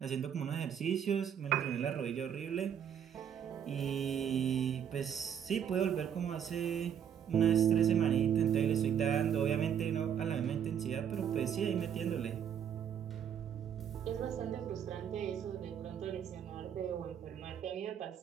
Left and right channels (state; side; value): quieter; left; 8.7 dB